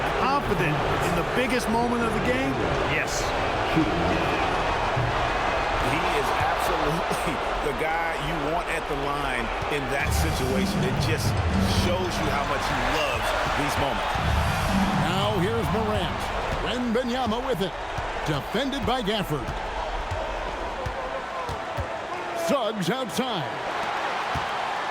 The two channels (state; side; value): identical; both; correlation 1.00